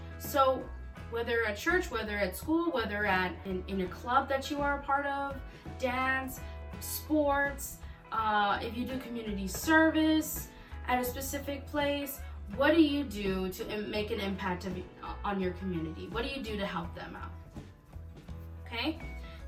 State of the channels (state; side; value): identical; both; correlation 1.00